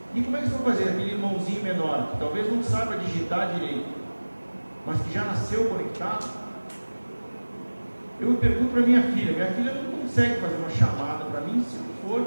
E como é que eles vão fazer? Aquele irmãozinho menor, que talvez não saiba digitar direito, mas que já nasceu conectado. Eu pergunto para minha filha não consegue fazer uma chamada para mim se não for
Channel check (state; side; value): inverted; both; correlation -1.00